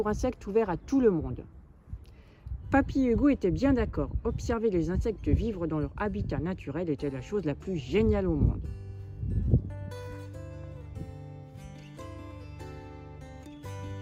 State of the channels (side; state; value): both; identical; correlation 1.00